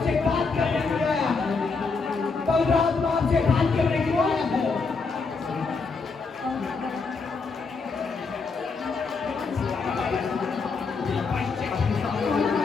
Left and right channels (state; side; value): quieter; right; 4.6 dB